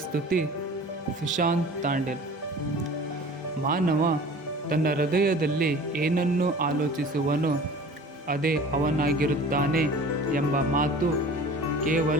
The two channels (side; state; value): both; normal; correlation 0.43